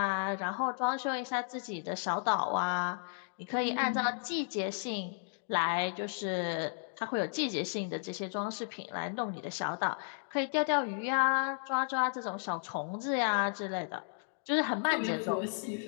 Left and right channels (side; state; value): right; silent; digital silence